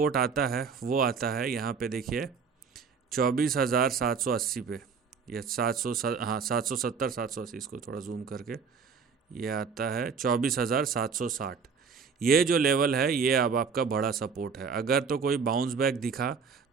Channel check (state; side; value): quieter; left; 5.7 dB